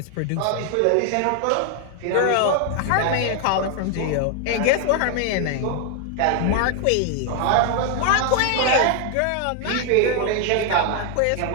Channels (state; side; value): different; both; correlation 0.00